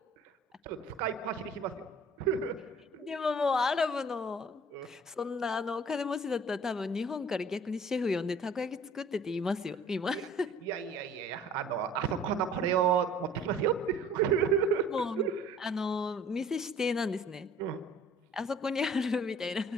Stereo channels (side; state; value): both; normal; correlation 0.51